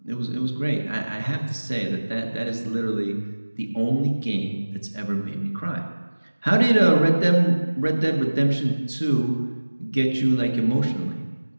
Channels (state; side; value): inverted; both; correlation -1.00